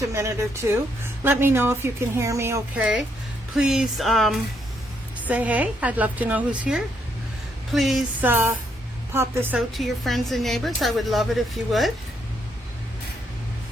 a minute or two. Let me know if you can hear me okay. Please say hey. I'd love to know who's here. Please pop this out to your friends and neighbors. I would love it if you would.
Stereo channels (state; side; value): normal; both; correlation 0.74